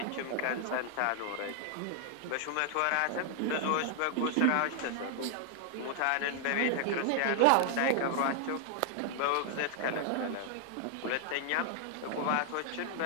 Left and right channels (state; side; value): different; both; correlation 0.00